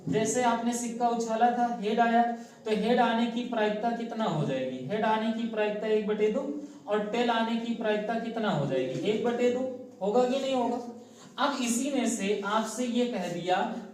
जैसे आपने सिक्का उछाला था, हेड आया, तो हेड आने की प्रायिकता कितना हो जाएगी? हेड आने की प्रायिकता 1/2, और टेल आने की प्रायिकता कितना हो जाएगी? 1/2। होगा कि नहीं होगा? अब इसी में से आपसे ये कह दिया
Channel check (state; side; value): identical; both; correlation 1.00